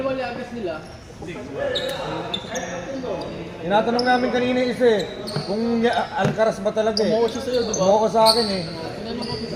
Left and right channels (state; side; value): identical; both; correlation 1.00